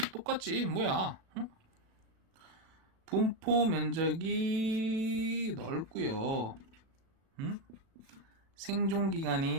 똑같지, 뭐야. 응? 분포 면적이 넓고요. 응? 생존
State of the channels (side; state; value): left; late; 37 ms